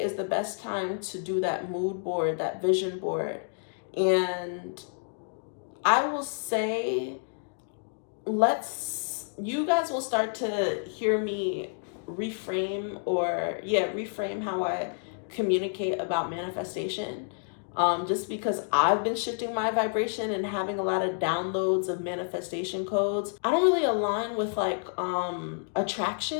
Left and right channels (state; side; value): silent; right; digital silence